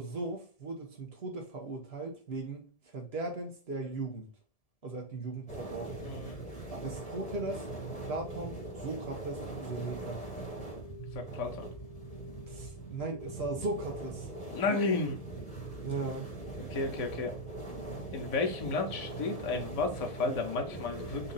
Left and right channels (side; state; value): right; late; 1.7 ms